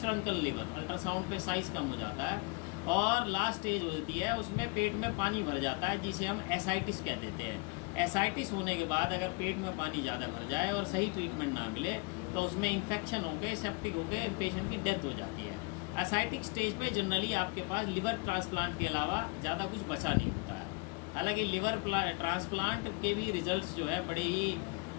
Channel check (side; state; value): right; quieter; 30.0 dB